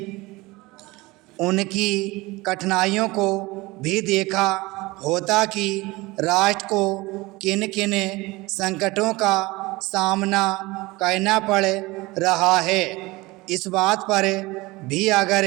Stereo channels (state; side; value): quieter; left; 21.8 dB